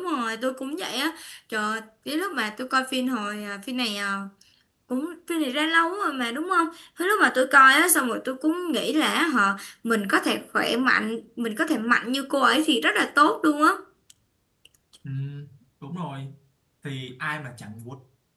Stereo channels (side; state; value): both; identical; correlation 1.00